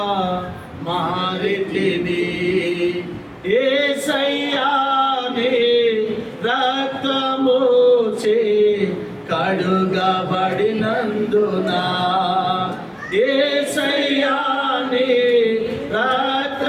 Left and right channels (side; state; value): both; identical; correlation 1.00